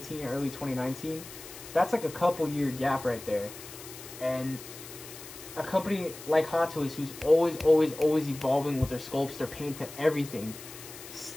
early 2019. That's like a couple year gap right there. And a company like Hot Toys, who's always evolving with their sculpts, their paint, and everything,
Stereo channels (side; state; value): left; noise; hiss, 14 dB below the sound